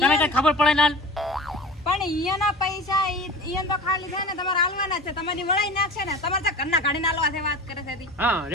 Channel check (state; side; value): normal; both; correlation 0.36